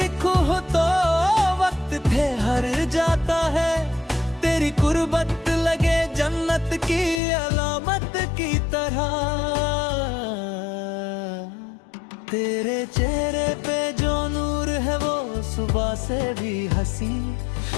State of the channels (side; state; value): right; drops out; at 7.2 s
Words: हो तो वक्त ठहर जाता है, तेरी कुर्बत लगे जन्नत की अलामत की तरह। तेरे चेहरे पे जो नूर है वो सुबह से भी हंसी,